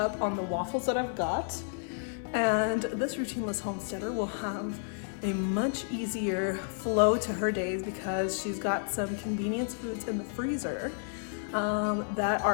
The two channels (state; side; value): silent; right; 57 dB below the other